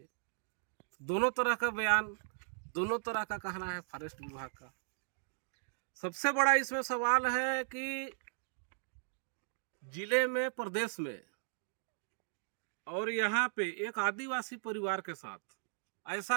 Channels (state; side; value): silent; left; digital silence